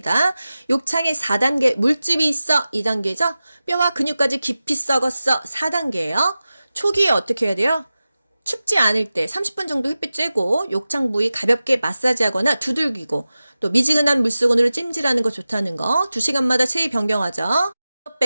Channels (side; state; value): both; inverted; correlation -0.95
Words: 욕창에 4단계 물집이 있어 2단계죠. 뼈와 근육까지 깊이 썩었어 4단계예요. 초기에 어떻게 해야 돼요? 춥지 않을 때 30분 정도 햇빛 쬐고 욕창 부위 가볍게 마사지하거나 두들기고 또 미지근한 물수건으로 찜질하는 거 좋다는 거. 2시간마다 체위 변경하죠.